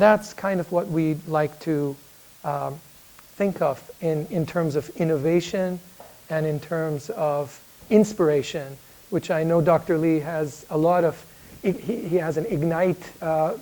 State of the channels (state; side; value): identical; both; correlation 1.00